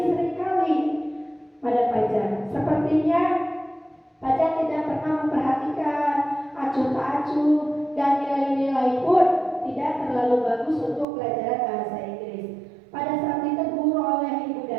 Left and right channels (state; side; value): drops out; left; at 11.1 s